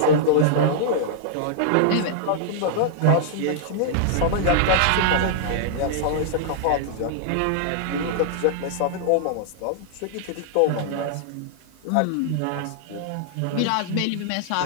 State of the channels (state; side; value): different; both; correlation -0.01